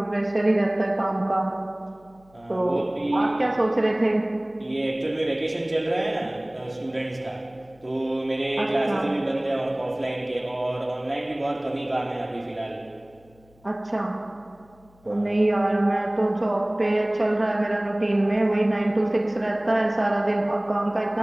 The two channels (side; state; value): left; noise; hum, 30 dB below the sound